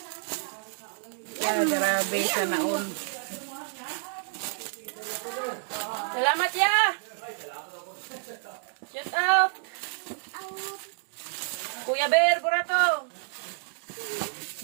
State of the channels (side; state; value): left; silent; digital silence